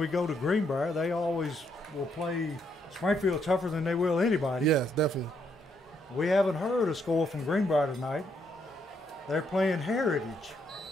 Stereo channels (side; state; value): both; normal; correlation 0.74